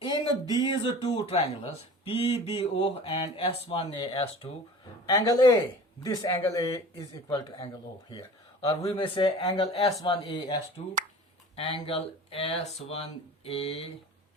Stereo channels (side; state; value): both; normal; correlation 0.40